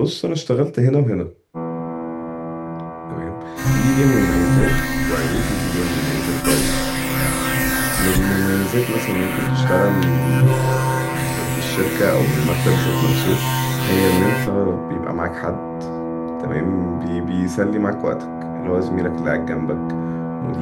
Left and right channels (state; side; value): identical; both; correlation 1.00